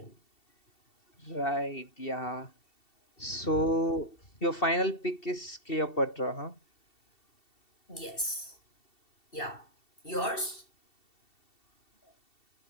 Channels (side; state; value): right; late; 2.7 ms